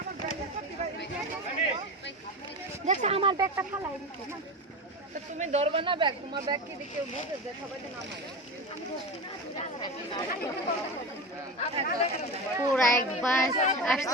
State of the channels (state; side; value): normal; both; correlation 0.24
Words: দেখছ আমার ব্যাগটা ফালাই দিতে না তো তুমি ধরবে না ব্যাগ তোমার ব্যাগ কি দেখে বুঝে যে সবাই তো নামায় পুরা এক বাস